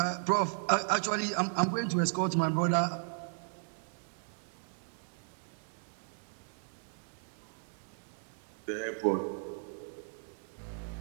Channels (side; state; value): left; silent; digital silence